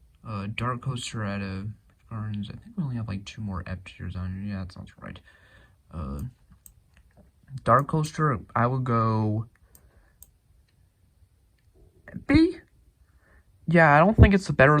Dark Coaster at Gardens. I think we only have like 2 more F tiers on here. Yeah, that sounds right. Dark Coaster, I would go B. Yeah, I don't think it's the better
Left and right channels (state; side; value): identical; both; correlation 1.00